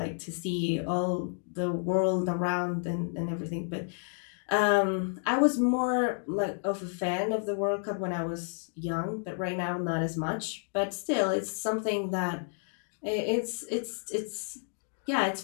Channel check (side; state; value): right; silent; 57 dB below the other